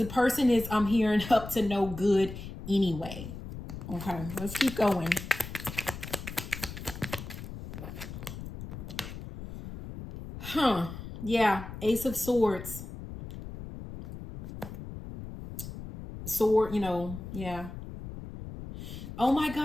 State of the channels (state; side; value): noise; left; rumble, 10 dB below the sound